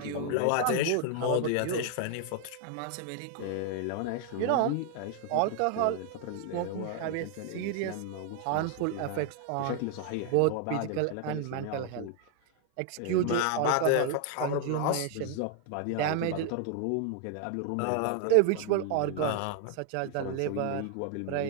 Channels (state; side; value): different; both; correlation 0.00